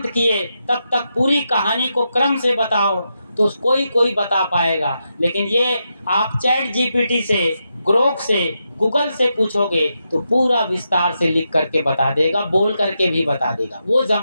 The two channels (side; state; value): both; inverted; correlation -0.85